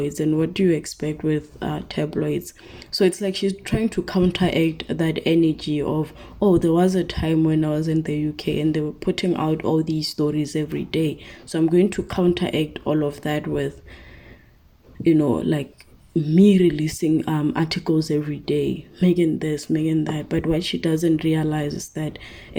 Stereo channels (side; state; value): both; identical; correlation 1.00